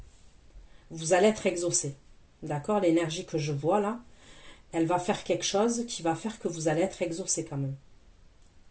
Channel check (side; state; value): both; identical; correlation 1.00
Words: vous allez être exaucé. D'accord? L'énergie que je vois là, elle va faire quelque chose qui va faire que vous allez être exaucé quand même.